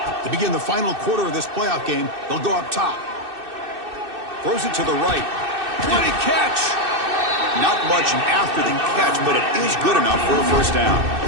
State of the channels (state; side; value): late; left; 2.6 ms